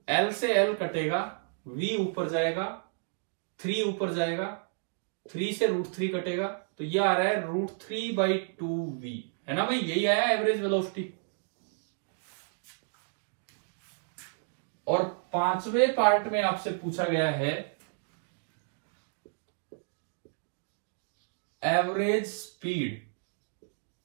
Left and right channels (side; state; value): left; silent; digital silence